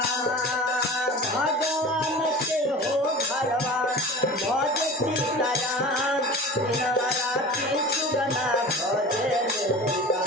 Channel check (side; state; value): both; normal; correlation 0.36